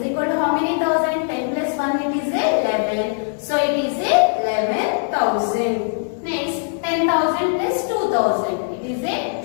equal to how many thousand? 10 plus 1 it is 11. So it is 11,000. Next, 10,000 plus 2,000 it is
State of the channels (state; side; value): silent; right; digital silence